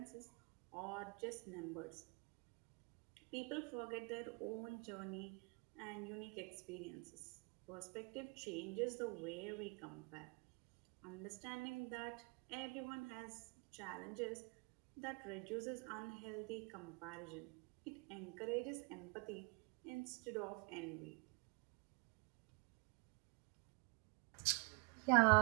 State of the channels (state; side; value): quieter; left; 31.7 dB